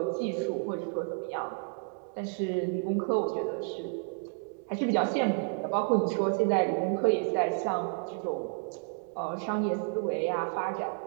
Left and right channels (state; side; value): silent; left; 56 dB below the other